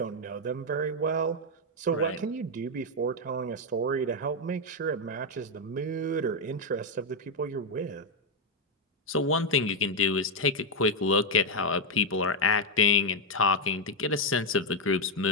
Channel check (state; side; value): normal; both; correlation 0.01